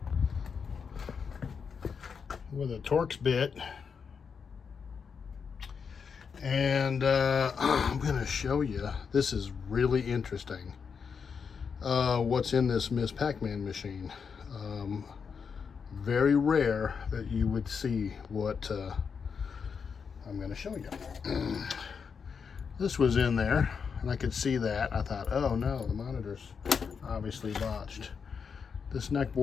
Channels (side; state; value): right; quieter; 6.1 dB